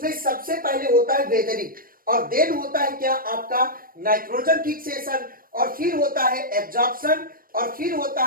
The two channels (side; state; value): left; late; 0.41 ms